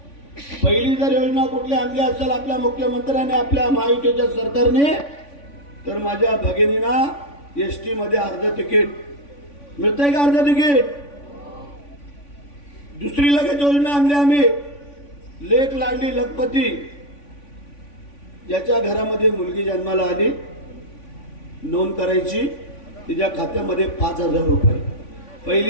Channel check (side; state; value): right; late; 3.5 ms